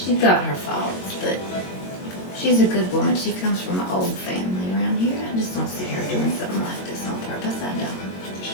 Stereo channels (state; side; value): late; right; 22 ms